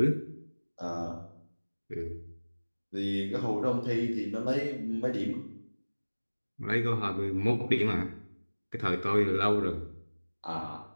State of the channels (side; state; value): both; inverted; correlation -1.00